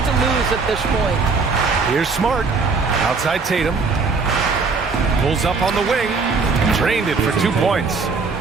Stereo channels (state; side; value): quieter; left; 4.5 dB